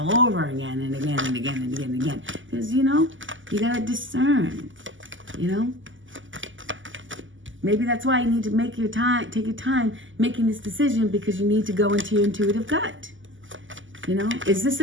over again and again and again and again and again? Because, you know, you got to discern, you know? Maybe that's why you need to take your time making this decision, because you need to go into your intuitive gut. You know, is this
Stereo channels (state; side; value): late; left; 0.56 ms